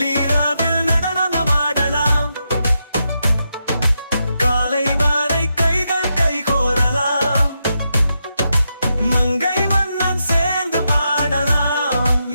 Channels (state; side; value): inverted; both; correlation -0.84